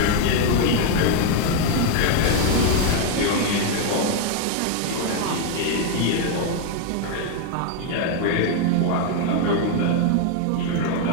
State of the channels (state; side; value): different; both; correlation 0.01